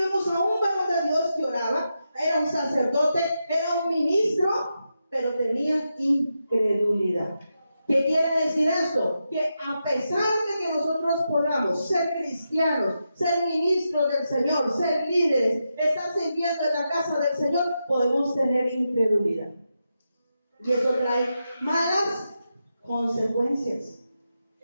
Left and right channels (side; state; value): both; inverted; correlation -0.87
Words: a un varón de Dios que oraba, era un sacerdote, era un ministro, pero tenía incredulidad. ¿Qué quiere decir esto? Que a pesar de que nosotros podamos ser cristianos, ser ministros del Señor, ser líderes, estar sirviendo en la casa del Señor, podemos tener incredulidad. Y eso trae malas consecuencias.